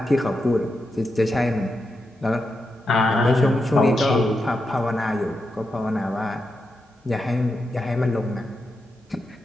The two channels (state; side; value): normal; both; correlation 0.86